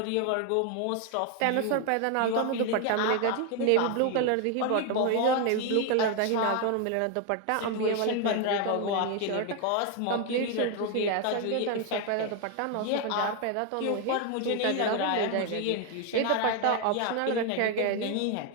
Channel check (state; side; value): different; both; correlation 0.01